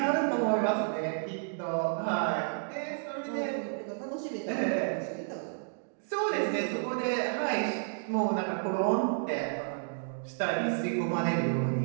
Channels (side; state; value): left; silent; digital silence